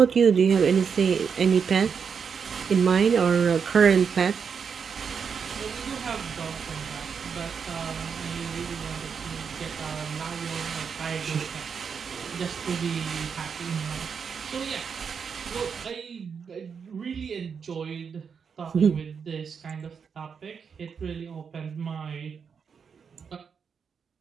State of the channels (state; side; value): quieter; left; 6.4 dB